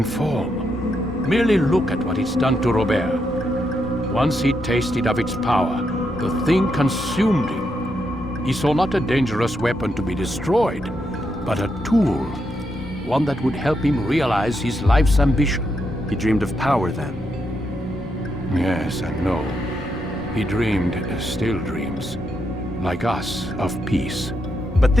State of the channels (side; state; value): both; normal; correlation 0.81